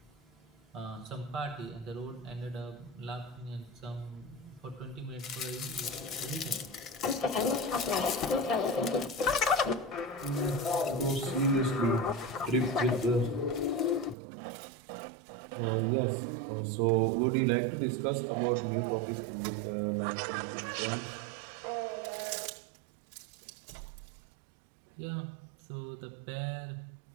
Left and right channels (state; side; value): drops out; left; at 14.2 s